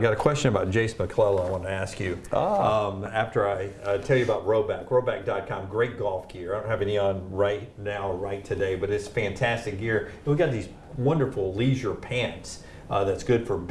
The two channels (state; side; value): identical; both; correlation 1.00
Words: a question about Jace McClellan I want to ask you. After I tell you about Roback.com, great golf gear. I don't have any on right today, but it's fantastic gear. And we got these wonderful leisure pants. That's good for